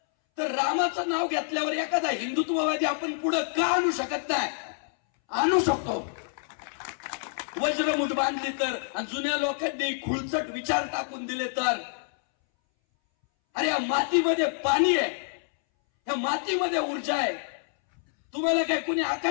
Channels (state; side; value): silent; right; 60 dB below the other